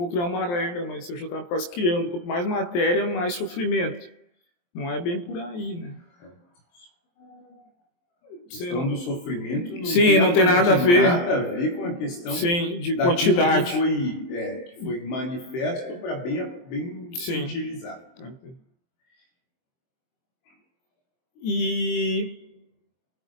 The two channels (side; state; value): right; late; 23 ms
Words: criar uma regra, mas eu já estava quase criando. Quanto mais matéria, mais sofrimento. Não é bem por aí, né? A questão do sofrimento não tem nada a ver com a questão de quantidade. Que foi manifesto para bem se utilizar. E